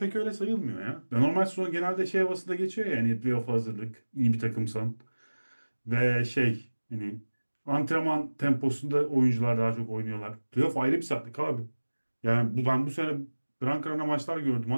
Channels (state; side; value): inverted; both; correlation -1.00